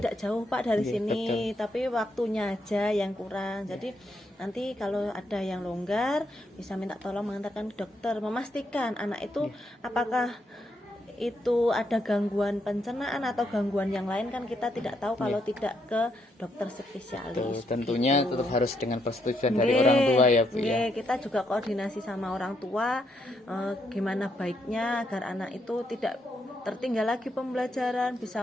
jauh Pak dari sini, tapi waktunya aja yang kurang. Jadi nanti kalau ada yang longgar bisa minta tolong mengantarkan ke dokter, memastikan anak itu apakah itu ada gangguan pencernaan atau gangguan yang lain, kan kita tidak tahu kalau tidak ke dokter spesialis. Tentunya tetap harus dengan persetujuan dari orang tua ya Bu ya. Kita juga koordinasi sama orang tua gimana baiknya agar anak itu tidak tertinggal lagi pembelajaran, bisa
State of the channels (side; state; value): both; normal; correlation 0.77